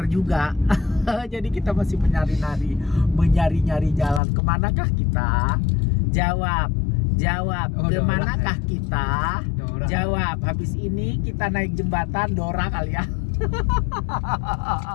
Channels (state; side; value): drops out; right; at 4.2 s